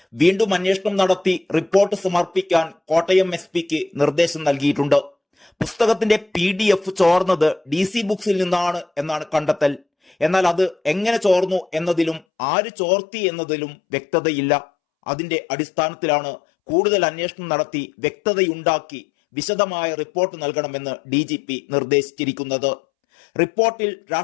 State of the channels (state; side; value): drops out; right; at 12.2 s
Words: വീണ്ടും അന്വേഷണം നടത്തി റിപ്പോർട്ട് സമർപ്പിക്കാൻ കോട്ടയം എസ്.പിക്ക് നിർദ്ദേശം നൽകിയിട്ടുണ്ട്. പുസ്തകത്തിന്റെ PDF ചോർന്നത് DC ബുക്സിൽ നിന്നാണ് എന്നാണ് കണ്ടെത്തൽ. എന്നാൽ അത് എങ്ങനെ ചോർന്നു എന്നതിലും ആര് ചോർത്തി എന്നതിലും വ്യക്തതയില്ല. അതിന്റെ അടിസ്ഥാനത്തിലാണ് കൂടുതൽ അന്വേഷണം നടത്തി വ്യക്തതയുണ്ടാക്കി വിശദമായ റിപ്പോർട്ട് നൽകണമെന്ന് DGP നിർദ്ദേശിച്ചിരിക്കുന്നത്. റിപ്പോർട്ടിൽ